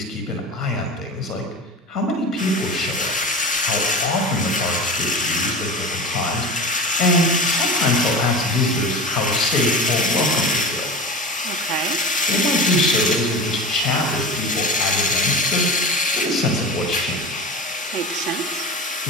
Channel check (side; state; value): both; normal; correlation 0.31